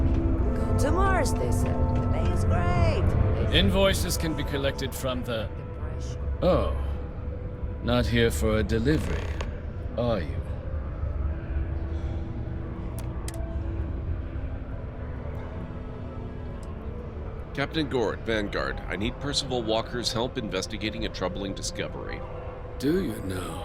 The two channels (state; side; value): identical; both; correlation 1.00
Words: Go to Mars, they said. The pay is great. Invoices can be collected from the... Oh. Not here for a delivery, are you? Captain Gord, Vanguard, I need Percival Walker's help investigating a troubling discovery. Do you